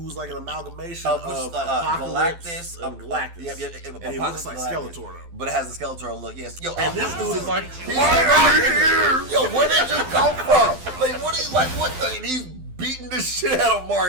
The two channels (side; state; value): left; late; 12 ms